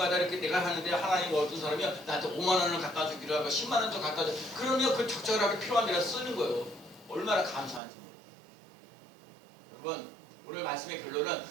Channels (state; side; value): drops out; left; at 7.8 s